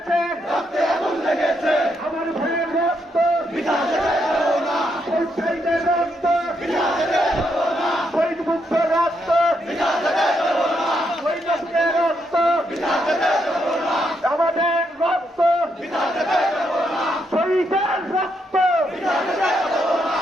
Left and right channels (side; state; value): both; normal; correlation 0.78